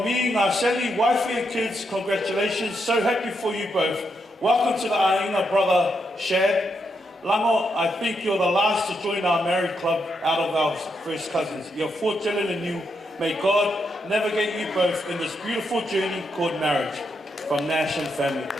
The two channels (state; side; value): normal; both; correlation 0.81